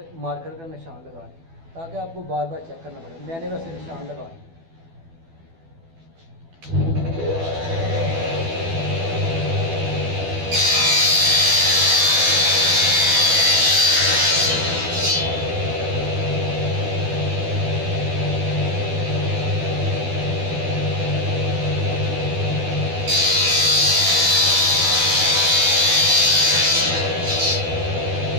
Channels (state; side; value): late; left; 12 ms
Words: मार्कर का निशान लगा लें ताकि आपको बार बार चेक करना पड़े। मैंने वैसे निशान लगा लिया।